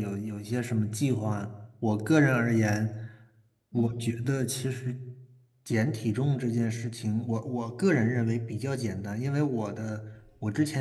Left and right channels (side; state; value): both; identical; correlation 1.00